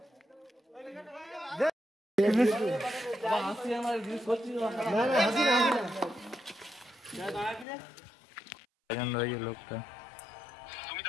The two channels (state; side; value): drops out; right; at 7.7 s